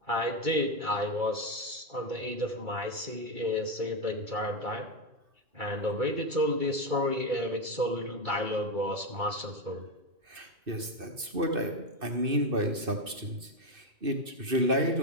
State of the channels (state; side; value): late; left; 2.6 ms